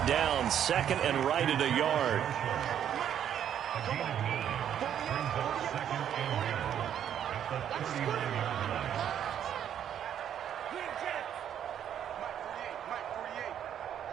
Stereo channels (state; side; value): quieter; left; 9.7 dB